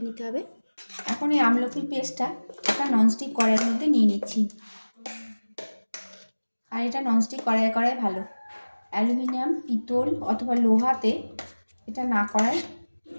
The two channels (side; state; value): both; inverted; correlation -1.00